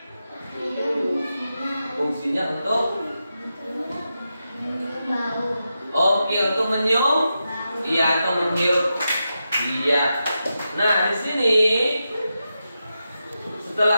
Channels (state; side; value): inverted; both; correlation -0.89